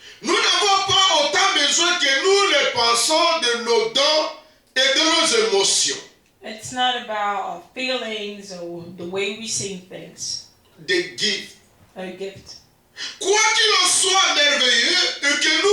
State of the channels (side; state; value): both; identical; correlation 1.00